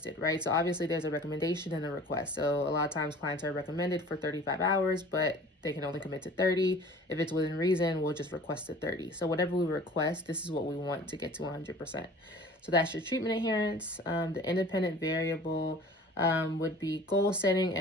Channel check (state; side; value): normal; both; correlation 0.45